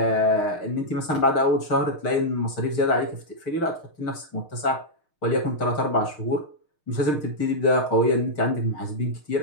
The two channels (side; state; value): right; late; 6.5 ms